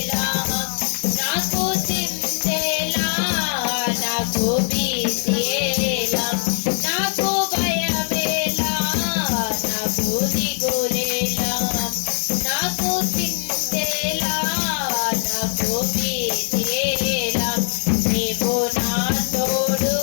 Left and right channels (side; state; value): right; silent; digital silence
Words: నాకు చింతేలా, నాకు భీతియేలా. నాకు భయమేలా, నాకు దిగులేలా, నాకు చింతేలా, నాకు భీతియేలా. నీవు నా తోడు